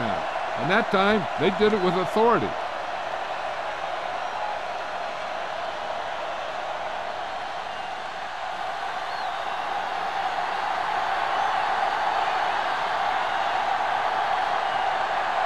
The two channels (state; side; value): identical; both; correlation 1.00